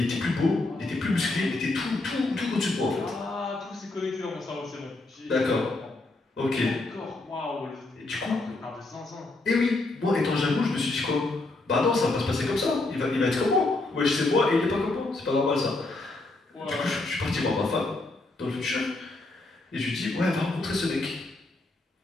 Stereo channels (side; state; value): right; quieter; 3.1 dB